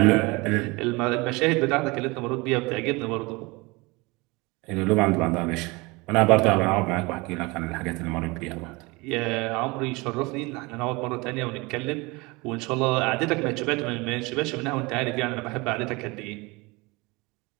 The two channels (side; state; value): left; quieter; 25.0 dB